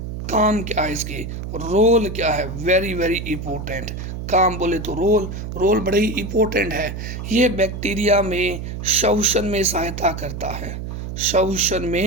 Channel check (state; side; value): noise; right; hum, 7 dB below the sound